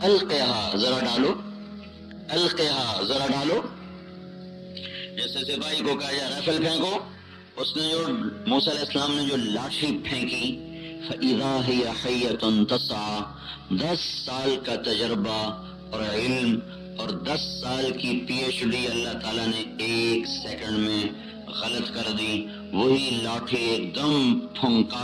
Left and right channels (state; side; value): identical; both; correlation 1.00